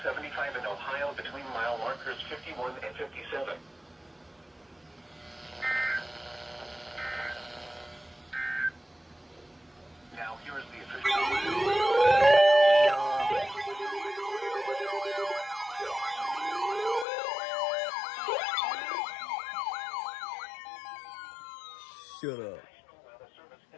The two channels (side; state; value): right; drops out; at 17.1 s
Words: in Ohio between mile markers 51 and 57. Now here is the official... Shut up. National Weather Service